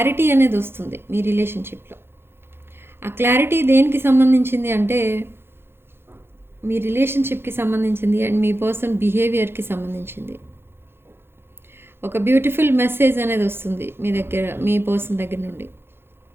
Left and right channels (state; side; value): late; left; 0.11 ms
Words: అనేది వస్తుంది మీ రిలేషన్షిప్లో. ఆ క్లారిటీ దేనికి సంబంధించింది అంటే, మీ రిలేషన్షిప్కి సంబంధించింది అండ్ మీ పర్సన్ బిహేవియర్కి సంబంధించింది. ఒక బ్యూటిఫుల్ మెసేజ్ అనేది వస్తుంది మీ దగ్గర, మీ పర్సన్ దగ్గర నుండి.